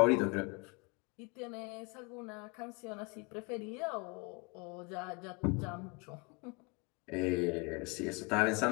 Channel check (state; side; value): quieter; right; 29.3 dB